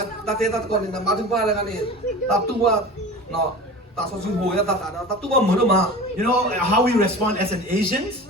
Ta thế ta còn là ba thứ ba là cái này. Ta tu qua nó ta so sinh hồi ta tu qua mới được mà. You know how we respond as an Asians?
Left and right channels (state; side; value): normal; both; correlation 0.35